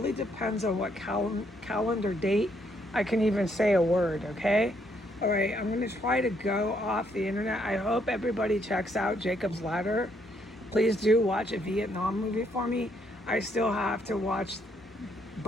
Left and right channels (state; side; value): normal; both; correlation 0.72